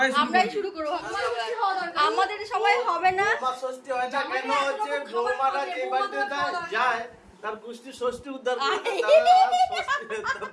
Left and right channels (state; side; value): identical; both; correlation 1.00